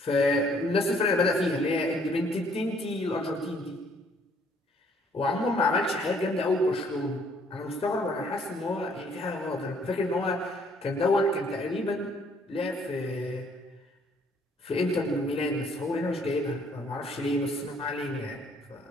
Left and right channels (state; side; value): normal; both; correlation 0.63